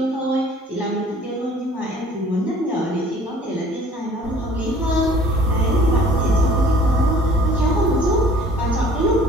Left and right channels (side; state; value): both; normal; correlation 0.52